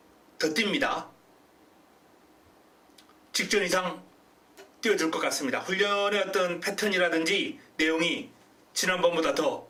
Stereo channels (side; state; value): both; identical; correlation 1.00